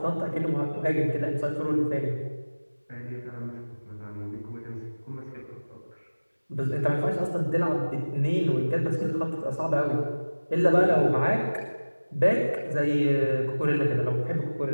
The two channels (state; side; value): inverted; both; correlation -1.00